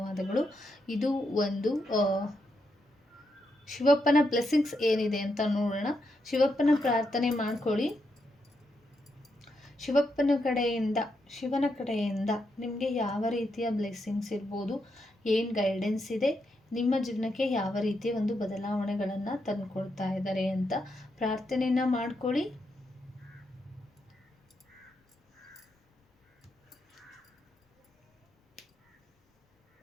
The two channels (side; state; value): both; normal; correlation 0.82